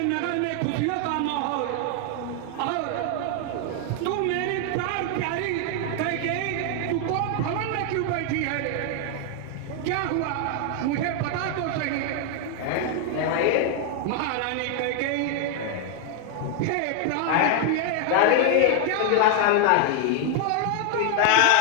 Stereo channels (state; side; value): different; both; correlation 0.01